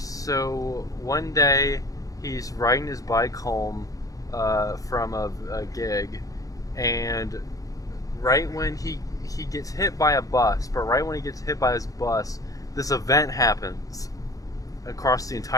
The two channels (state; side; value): late; right; 0.17 ms